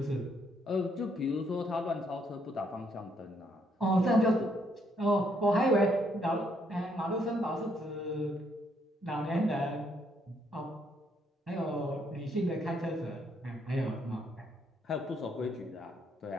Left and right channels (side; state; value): both; normal; correlation 0.71